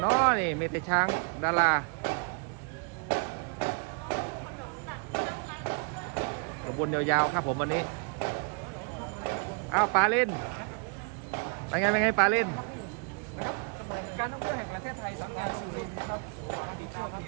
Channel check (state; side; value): quieter; left; 36.3 dB